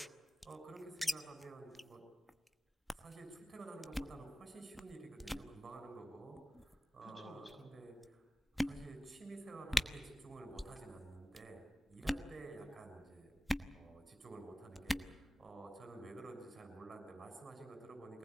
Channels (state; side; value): normal; both; correlation 0.96